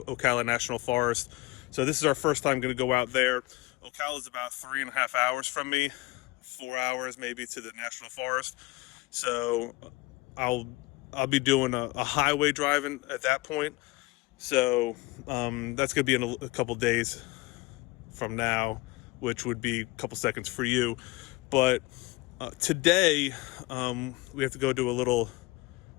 National Forest. So this is our first time going to go out there. Ocala is about 3.5 hours from me, 4 hours maybe to the National Forest. So I'll be doing a highway driving at that point. So that's going to be in a couple days from now, which would be a couple seconds for you. But today we have to go do a little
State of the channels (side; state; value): right; quieter; 21.6 dB